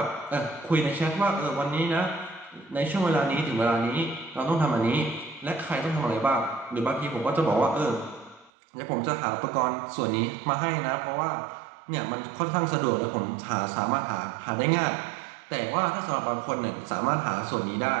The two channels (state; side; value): drops out; left; at 8.5 s